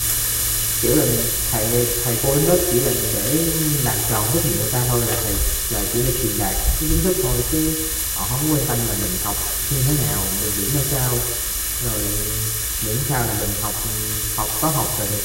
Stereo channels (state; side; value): identical; both; correlation 1.00